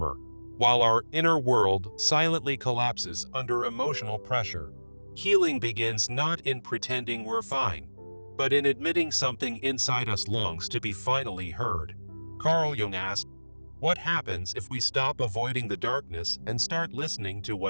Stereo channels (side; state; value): both; inverted; correlation -1.00